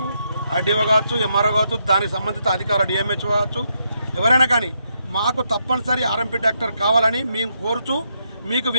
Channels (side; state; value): both; inverted; correlation -0.79